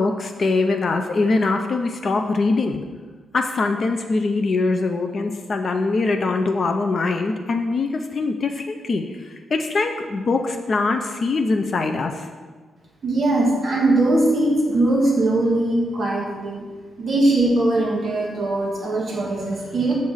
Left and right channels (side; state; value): both; normal; correlation 0.83